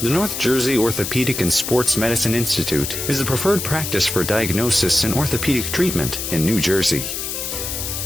The North Jersey Orthopedic and Sports Medicine Institute is the preferred practice for diagnosis and orthopedic treatment in New Jersey.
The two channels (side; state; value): left; noise; hiss, 4 dB below the sound